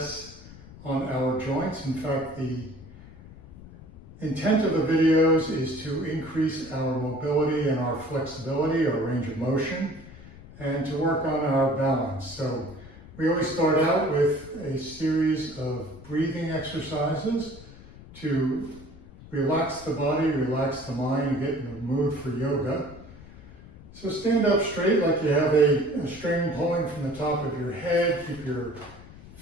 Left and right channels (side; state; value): left; noise; rumble, 18 dB below the sound